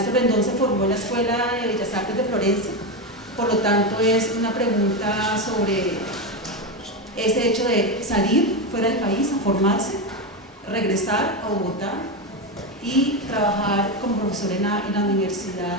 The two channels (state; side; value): normal; both; correlation 0.13